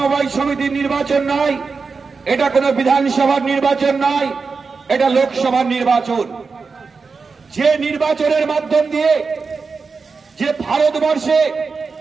সমিতির নির্বাচন নয়, এটা কোনো বিধানসভার নির্বাচন নয়, এটা লোকসভার নির্বাচন। যে নির্বাচনের মাধ্যম দিয়ে যে ভারতবর্ষে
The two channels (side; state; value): left; quieter; 4.8 dB